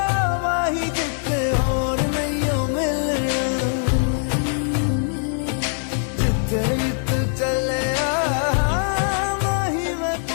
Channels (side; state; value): right; silent; digital silence